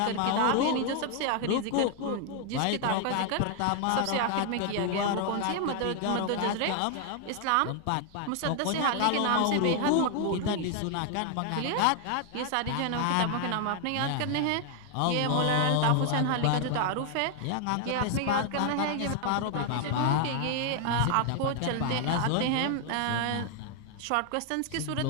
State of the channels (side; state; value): both; different; correlation 0.00